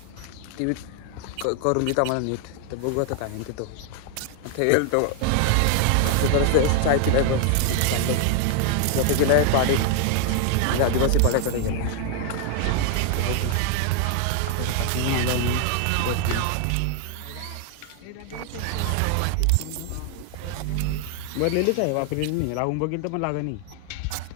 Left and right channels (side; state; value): both; different; correlation 0.00